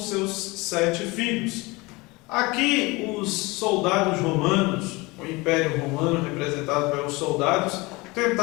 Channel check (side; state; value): right; quieter; 23.9 dB